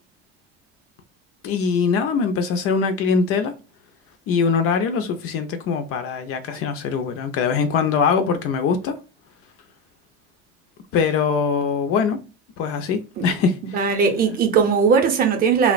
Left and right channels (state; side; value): normal; both; correlation 0.19